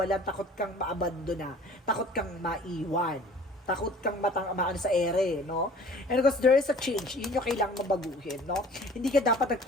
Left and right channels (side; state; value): both; normal; correlation 0.48